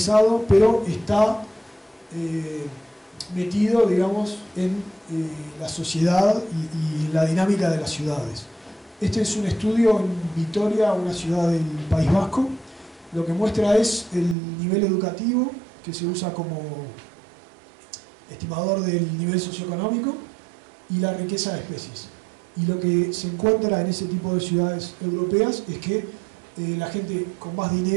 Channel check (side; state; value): left; drops out; at 14.4 s